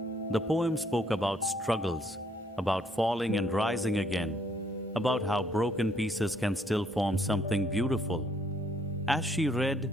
The poem spoke about struggles, about falling and rising again, about how broken pieces can still form something beautiful. As she read,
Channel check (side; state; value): both; normal; correlation 0.67